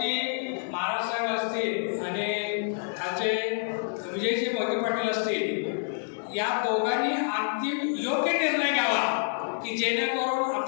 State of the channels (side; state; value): right; silent; 59 dB below the other